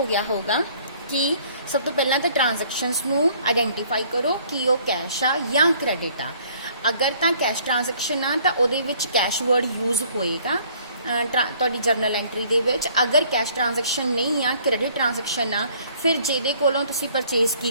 गया होगा कि सब तो पहला तो ट्रांजैक्शनस नूं आइडेंटिफाई करो कि वो कैश आ या क्रेडिट आ। अगर तो कैश ट्रांजैक्शन आ तो उहदे विच कैश वर्ड यूज होएगा तुहाडी जर्नल एंट्री दे विच। अगर कैश ट्रांजैक्शन नहीं आ, क्रेडिट ट्रांजैक्शन आ, फिर जिहदे कोलों तुसीं परचेज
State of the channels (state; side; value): inverted; both; correlation -0.59